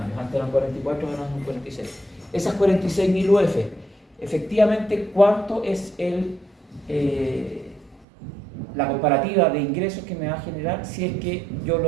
antes eran 44, ahora son 46. Esas 46.000 UF, efectivamente, ¿cuánto es la comparativa de ingresos que me va a generar si es que yo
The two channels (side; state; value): left; drops out; at 8.1 s